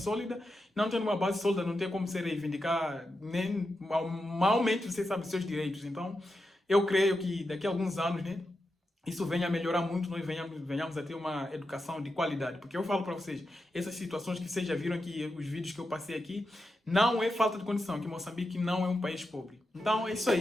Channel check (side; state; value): both; normal; correlation 0.88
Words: não tem uma base sólida, não tem como se reivindicar, nem malmente você sabe seus direitos. Então, eu creio que daqui a alguns anos, né, isso venha a melhorar muito, nós venhamos a ter uma educação de qualidade. Porque eu falo para vocês, essas situações que vocês já viram aqui, os vídeos que eu passei aqui, Não é falta de condição, que Moçambique não é um país pobre. Então é isso